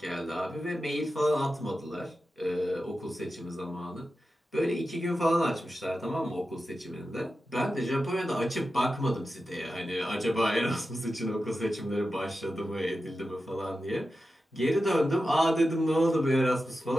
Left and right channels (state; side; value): normal; both; correlation 0.92